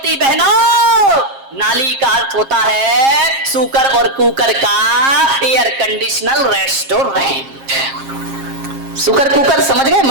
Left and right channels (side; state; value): left; late; 7.5 ms